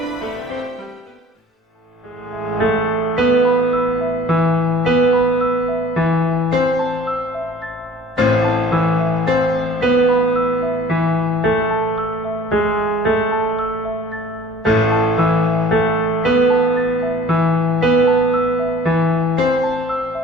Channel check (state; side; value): normal; both; correlation 0.50